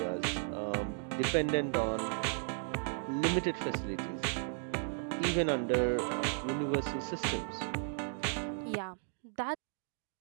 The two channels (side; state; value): left; silent; digital silence